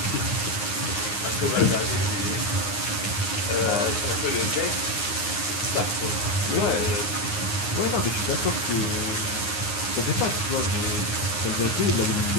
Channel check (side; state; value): right; late; 9.7 ms